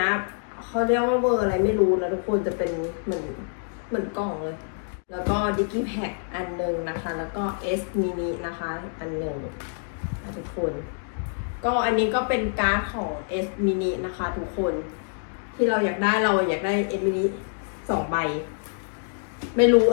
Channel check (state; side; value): silent; right; digital silence